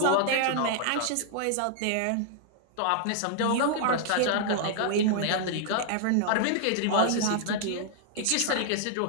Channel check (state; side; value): different; both; correlation -0.01